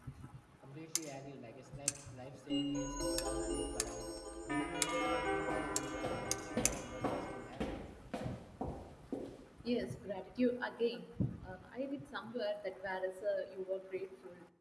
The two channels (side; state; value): both; identical; correlation 1.00